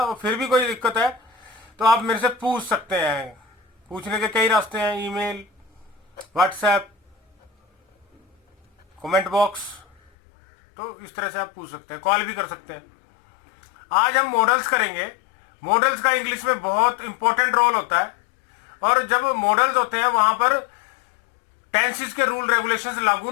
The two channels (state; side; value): drops out; right; at 10.1 s